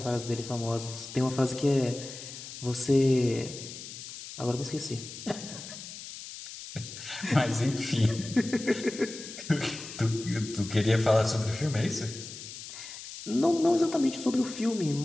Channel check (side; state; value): left; noise; hiss, 12 dB below the sound